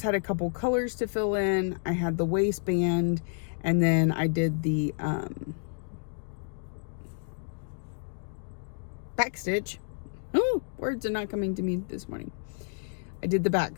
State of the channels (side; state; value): right; silent; digital silence